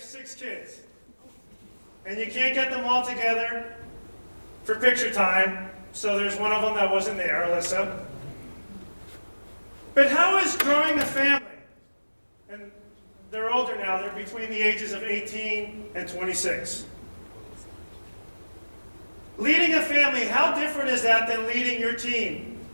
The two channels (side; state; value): both; inverted; correlation -1.00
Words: 6 kids, and you can't get them all together for picture time, so there's one of them that wasn't there, Alyssa. But how is growing a family, and they're older now, they're between the ages of 18 and 26. Leading a family, how different is that than leading your team